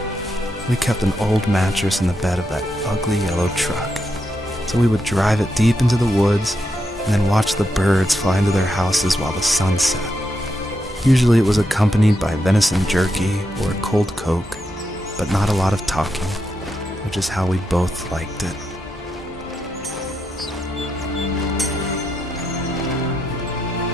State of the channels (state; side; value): normal; both; correlation 0.83